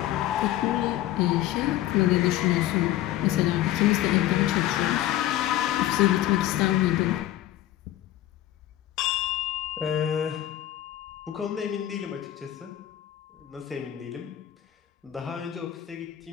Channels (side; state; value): right; quieter; 13.4 dB